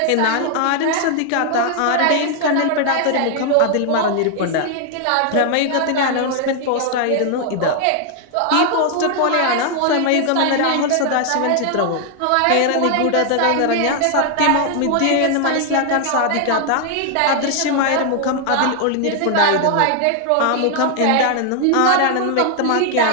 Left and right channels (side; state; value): both; different; correlation 0.00